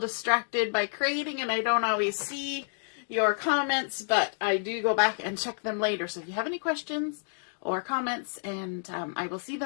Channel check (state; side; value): silent; right; digital silence